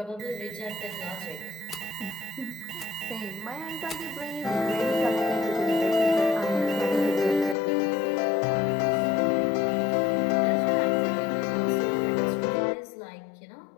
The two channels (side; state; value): right; drops out; at 7.6 s